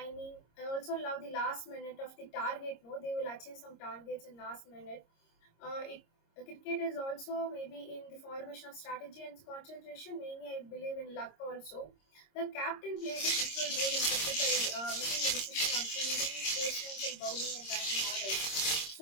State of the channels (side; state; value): right; late; 26 ms